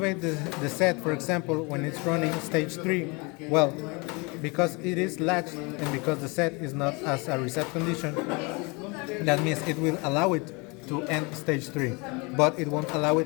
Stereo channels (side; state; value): right; quieter; 28.6 dB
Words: the set, for example, when it's running stage 3, well, because it is latched and because the set is not as a reset condition, that means it will allow it to end stage 3, but it won't allow